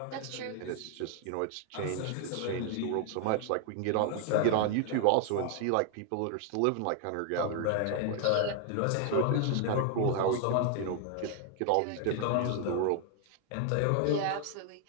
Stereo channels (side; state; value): both; different; correlation 0.00